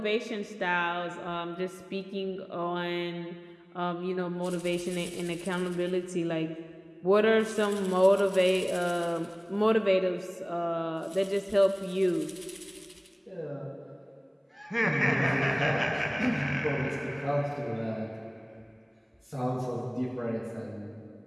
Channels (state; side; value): identical; both; correlation 1.00